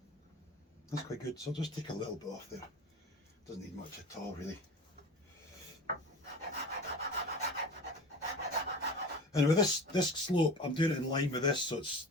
that's quite good, so I'll just take a little bit off there. Doesn't need much at all really. And with this slope, I'm doing it in line with this, so it's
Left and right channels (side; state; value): both; normal; correlation 0.35